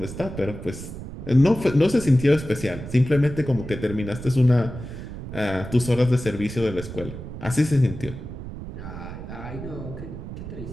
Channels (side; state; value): right; noise; rumble, 10 dB below the sound